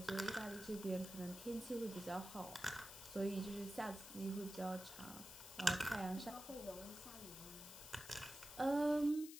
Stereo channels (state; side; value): noise; left; hiss, 12 dB below the sound